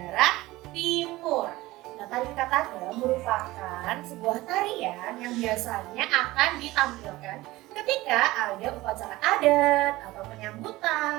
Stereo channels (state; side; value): quieter; left; 18.7 dB